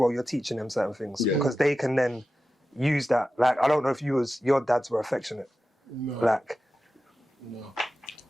you're teaching them certain things because they can then use that. Like I don't know if your dads were affectionate. No. Like, no.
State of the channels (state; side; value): normal; both; correlation 0.93